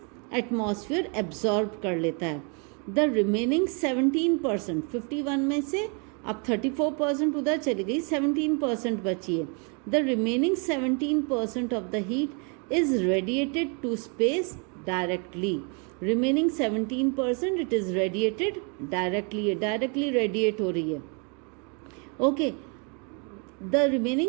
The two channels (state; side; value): quieter; left; 35.9 dB